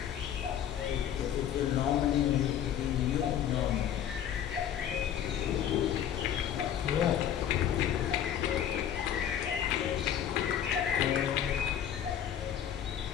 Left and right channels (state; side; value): quieter; right; 9.7 dB